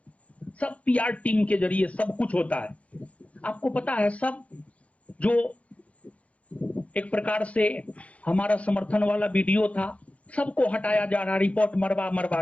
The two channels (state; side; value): late; right; 0.065 ms